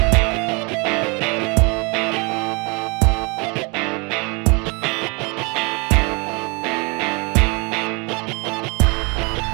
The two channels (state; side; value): quieter; left; 30.2 dB